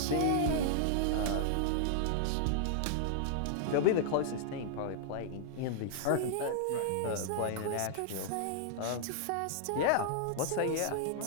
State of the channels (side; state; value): both; different; correlation -0.01